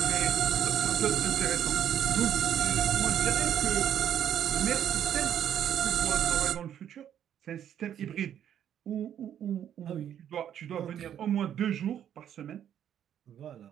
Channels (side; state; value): left; quieter; 9.9 dB